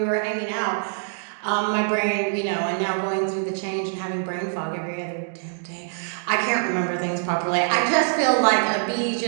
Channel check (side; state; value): left; silent; digital silence